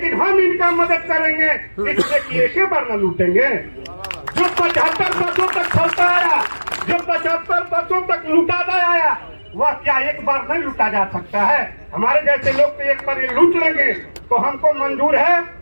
हम इनका मदद करेंगे इसलिए कि एक ही बार न लूटेंगे। जो 75 वर्षों तक चलता आया, जो 75 वर्षों तक लूटाता आया, वह क्या एक बार नहीं लूटा जा सकता है? हमारे जैसे लोग तो एक बार ये लूट लेंगे तो हमको मंजूर है,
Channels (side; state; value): both; inverted; correlation -1.00